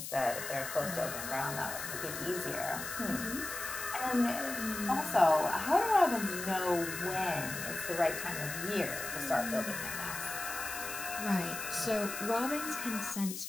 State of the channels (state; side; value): noise; left; hiss, 7 dB below the sound